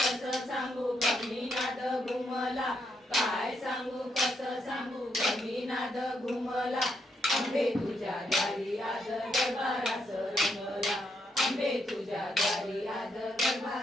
सांगू कमीनाद घुमला, काय सांगू कसं सांगू कमीनाद घुमला. अंबे तुझ्या दारी आज गरबारास रंगला, अंबे तुझ्या दारी आज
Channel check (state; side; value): normal; both; correlation 0.78